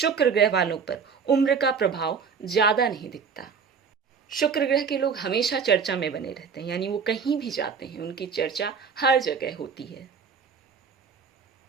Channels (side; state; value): left; quieter; 6.0 dB